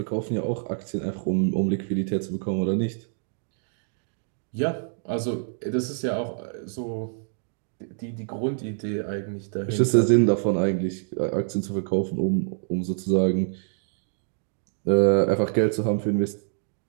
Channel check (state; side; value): silent; left; digital silence